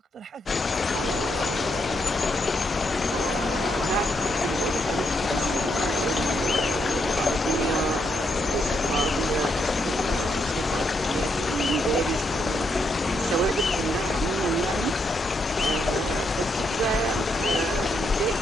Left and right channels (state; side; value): normal; both; correlation 0.78